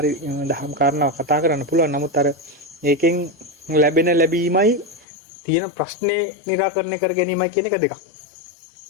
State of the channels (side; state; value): right; drops out; at 5.1 s